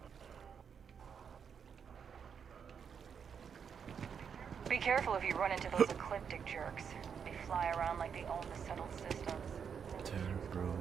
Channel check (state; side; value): quieter; left; 7.0 dB